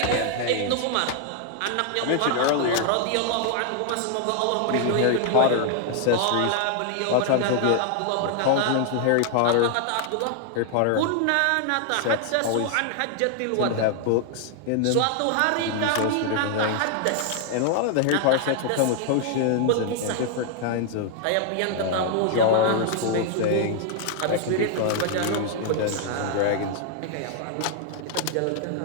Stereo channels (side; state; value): both; different; correlation 0.00